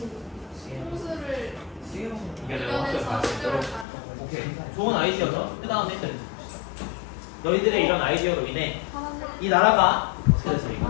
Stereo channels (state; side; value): drops out; right; at 3.9 s